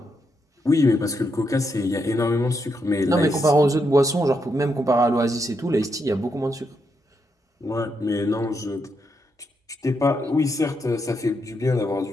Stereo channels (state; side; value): normal; both; correlation 0.81